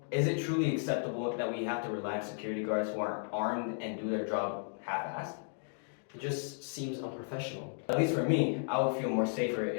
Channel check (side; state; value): right; silent; 55 dB below the other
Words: is it truly acceptable that we have to rely on security guards who aren't armed and do their job half-assed? It just seems unprofessional. At least for me, I would feel more safer